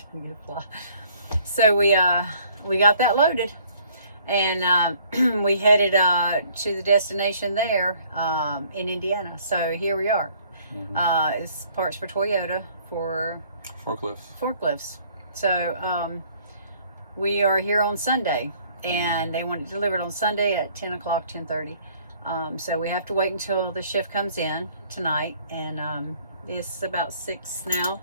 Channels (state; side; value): inverted; both; correlation -0.59